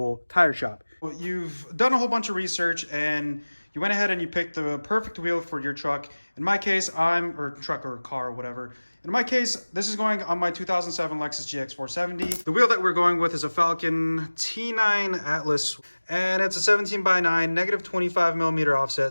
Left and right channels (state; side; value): inverted; both; correlation -1.00